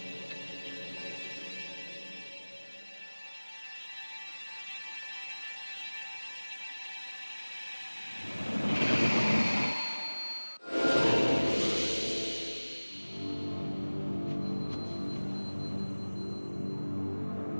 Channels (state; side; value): inverted; both; correlation -1.00